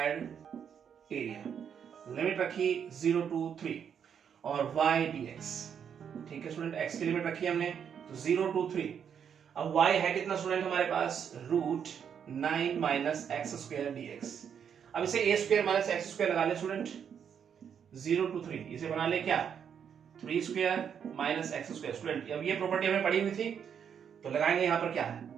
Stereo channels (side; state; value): left; quieter; 7.8 dB